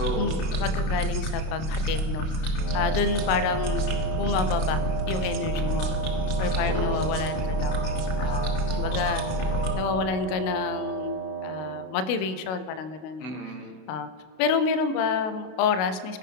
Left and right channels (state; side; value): late; right; 32 ms